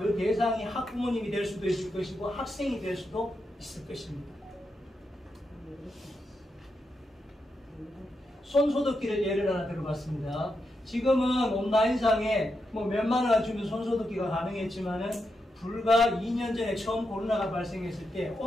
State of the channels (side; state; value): both; normal; correlation 0.85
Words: 대상이 학부모님이 될 수도 있을 것이고 학생이 될 수도 있을 것입니다. 손소독기를 예를 하나 들어봤습니다. 지금은 온라인상에 몇만 원 주면 손소독기가 가능했지만은 불과 2년 전에 처음 코로나가 발생했을 때